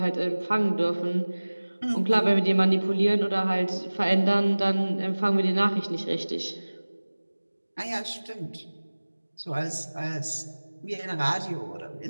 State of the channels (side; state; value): both; inverted; correlation -1.00